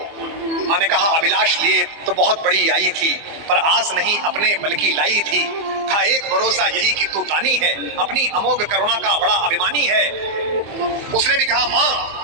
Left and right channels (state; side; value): late; left; 24 ms